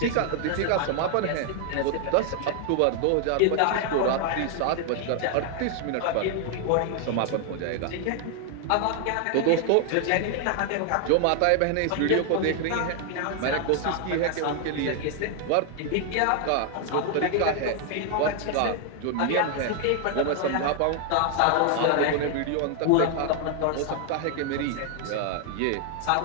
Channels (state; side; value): different; both; correlation 0.00